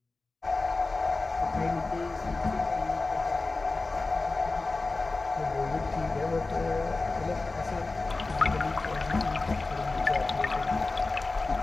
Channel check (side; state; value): right; quieter; 3.5 dB